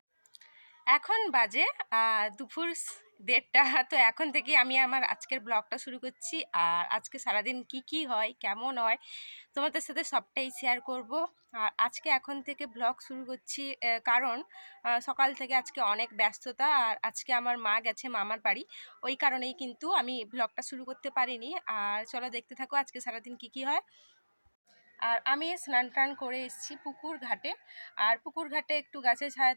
এখন বাজে দুপুর 1:30। তো এখন থেকে আমি আমার আজকের ব্লগটা শুরু করছি। আর আজকে সারাদিন কি হয়, কেমন হয়, তোমাদের সাথে সবটাই শেয়ার করব। আর আজকে এখন থেকে ব্লগ শুরু করছি কারণ সকাল থেকে আজকে অনেক ব্যস্ততা। আর আজকে আমার মা গেছে মামার বাড়ি, ওই কারণেই কিন্তু আমি ব্লগটা শুরু করতে পারিনি। আর চলো দেখতে থাকো আজকে সারাদিন কি হয়। আর আমি স্নান টান করে এসেছি পুকুর ঘাটে। আর পুকুর ঘাটে একটু গাছের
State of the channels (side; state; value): both; inverted; correlation -1.00